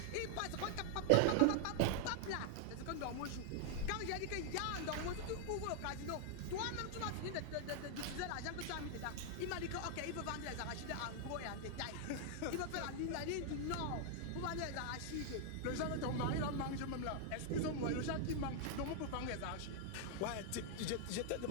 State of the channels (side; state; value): both; different; correlation 0.00